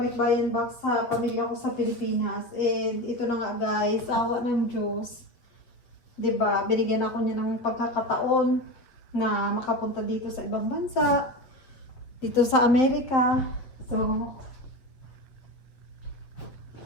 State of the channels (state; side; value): late; right; 7.9 ms